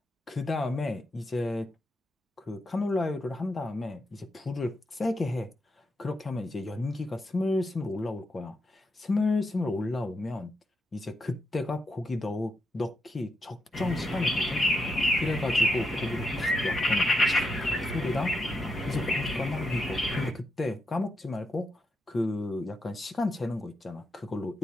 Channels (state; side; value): normal; both; correlation 0.83